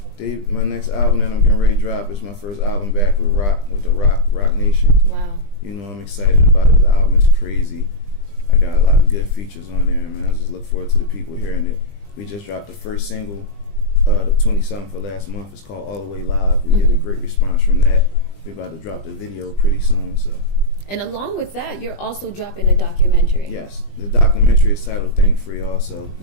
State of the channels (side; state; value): right; late; 20 ms